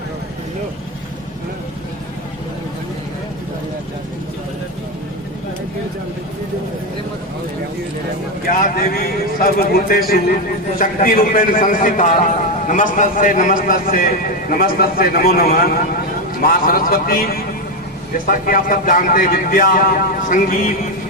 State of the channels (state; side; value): normal; both; correlation 0.09